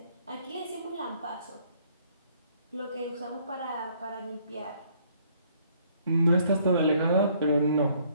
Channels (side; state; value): both; inverted; correlation -0.64